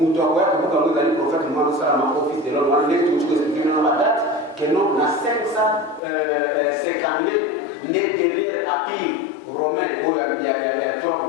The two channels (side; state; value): right; drops out; at 6.0 s